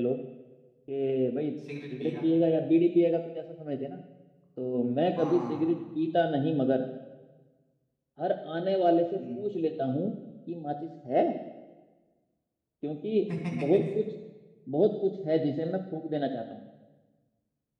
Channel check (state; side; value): identical; both; correlation 1.00